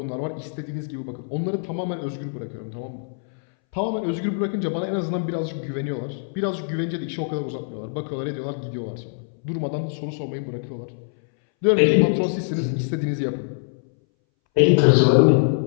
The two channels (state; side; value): silent; right; 62 dB below the other